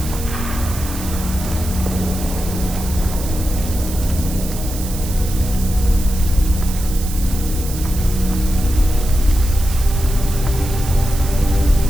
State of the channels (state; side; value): noise; right; hiss, 11 dB below the sound